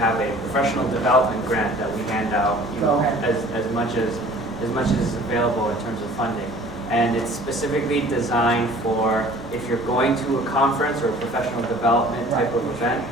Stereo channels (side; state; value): both; normal; correlation 0.49